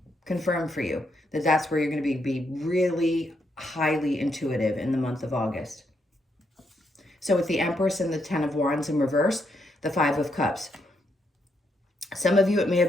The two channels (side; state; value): both; normal; correlation 0.78